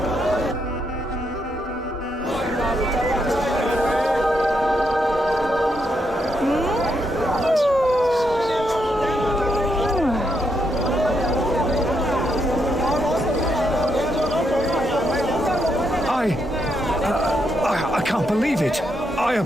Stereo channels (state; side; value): normal; both; correlation 0.79